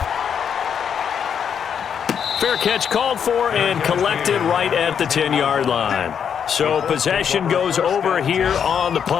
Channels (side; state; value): right; quieter; 7.7 dB